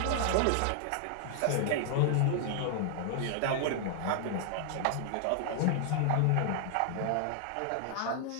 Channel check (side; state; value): both; different; correlation -0.01